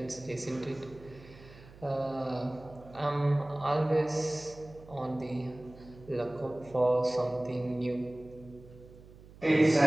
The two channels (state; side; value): noise; right; hum, 20 dB below the sound